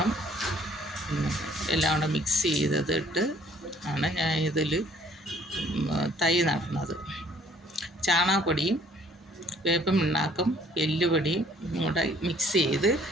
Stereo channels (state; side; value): normal; both; correlation 0.59